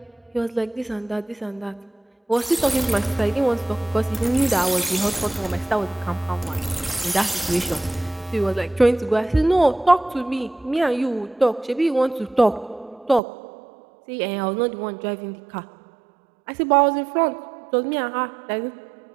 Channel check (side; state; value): left; drops out; at 13.2 s